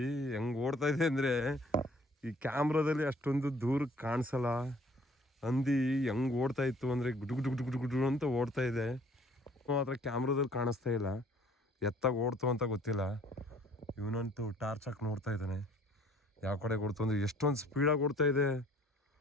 ಹೆಂಗೆ ಓಡ್ತಾ ಇದೆ ಅಂದರೆ, ಈ ಕ್ಯಾಮ್ರಾದಲ್ಲಿ ಅಷ್ಟೊಂದು ದೂರ ಕಾಣಿಸಲ್ಲ. ಹಂದಿ ಹೆಂಗೆ ಓಡ್ತಾ ಇತ್ತು ಅಂದರೆ ಗುಡು ಅಂತ ಓಡ್ತಾ ಇದೆ. ಮಾತ್ರ ಕ್ಯಾಮ್ರಾದಲ್ಲಿ ಕಾಣಿಸ್ತಾ ಇಲ್ಲ, ಎತ್ತಾಗ ಓಡ್ತು ಅಂತ ಗೊತ್ತಿಲ್ಲ. ಇವನಂತೂ ಟಾರ್ಚ್ ಹಾಕಿ ನೋಡ್ತಾ ಇದ್ದಾನೆ ಯಾವ ಕಡೆಗೆ ಓಡ್ತು ಅಂದರೆ. ಎಷ್ಟೊಂದು ಸ್ಪೀಡಾಗಿ ಓಡ್ತಾ ಇದೆ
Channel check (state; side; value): normal; both; correlation 0.57